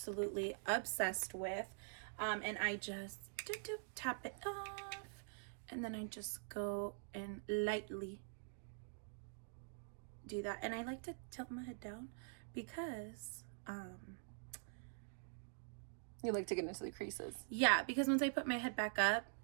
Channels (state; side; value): silent; left; digital silence